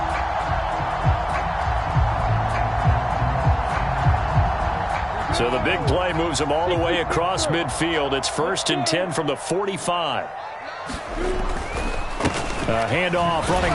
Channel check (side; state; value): both; identical; correlation 1.00